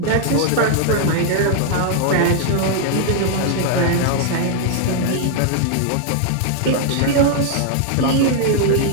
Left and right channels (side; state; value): both; different; correlation -0.01